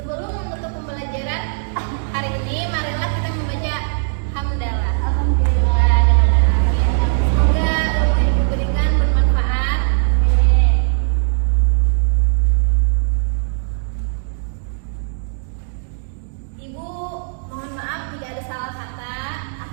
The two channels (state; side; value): silent; left; digital silence